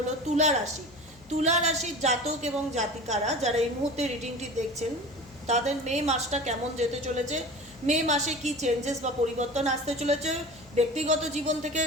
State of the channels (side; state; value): left; noise; hum, 25 dB below the sound